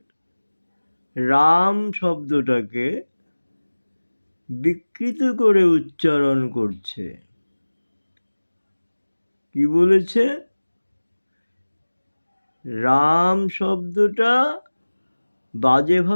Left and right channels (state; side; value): inverted; both; correlation -1.00